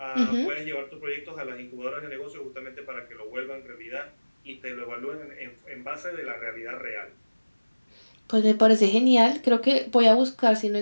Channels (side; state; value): both; inverted; correlation -1.00